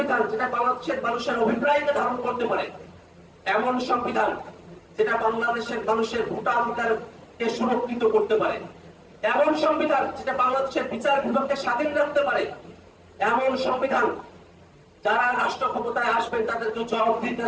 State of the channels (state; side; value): identical; both; correlation 1.00